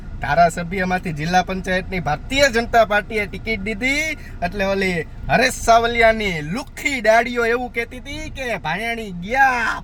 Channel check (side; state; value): both; identical; correlation 1.00